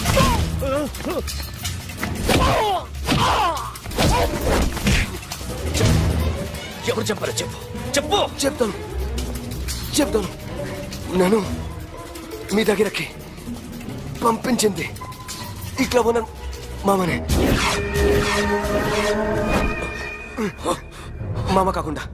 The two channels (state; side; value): identical; both; correlation 1.00